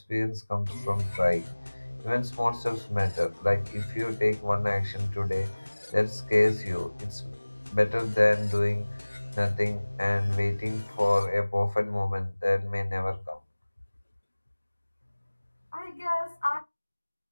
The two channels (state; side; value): inverted; both; correlation -1.00